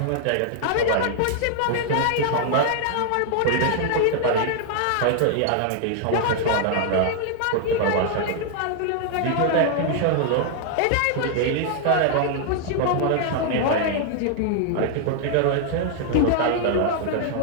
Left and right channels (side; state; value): both; different; correlation 0.00